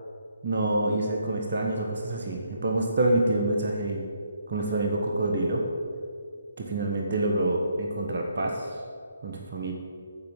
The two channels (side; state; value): both; inverted; correlation -0.70